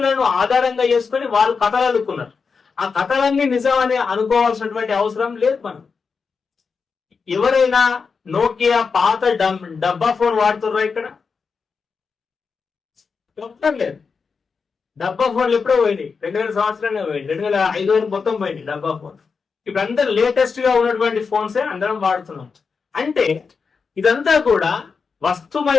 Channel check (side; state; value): right; quieter; 5.2 dB